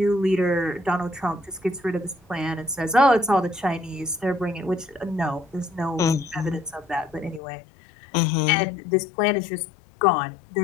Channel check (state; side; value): drops out; right; at 7.4 s